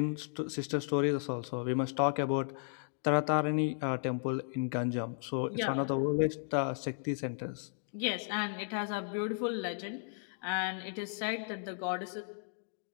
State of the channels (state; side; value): silent; right; digital silence